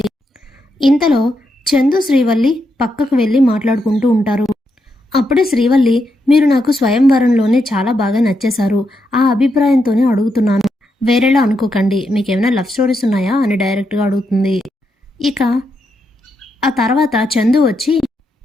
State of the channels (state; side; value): normal; both; correlation 0.82